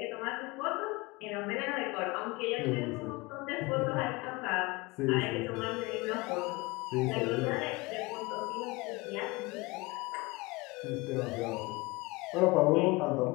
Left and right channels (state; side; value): quieter; right; 23.7 dB